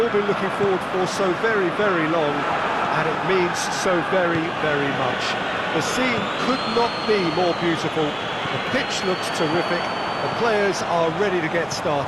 been looking forward for so very, very long, and it means so very, very much. The scene could not be more beautiful. The pitch looks terrific. The players are ready to get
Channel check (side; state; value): both; identical; correlation 1.00